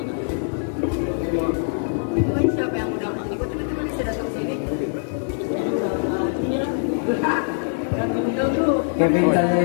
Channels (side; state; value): right; silent; 59 dB below the other